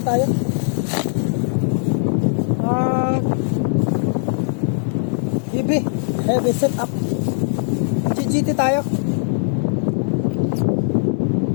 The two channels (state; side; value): silent; right; digital silence